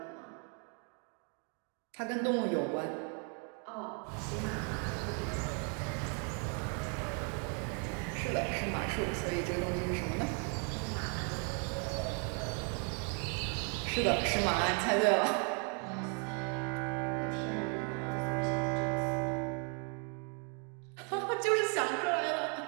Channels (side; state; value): left; quieter; 37.6 dB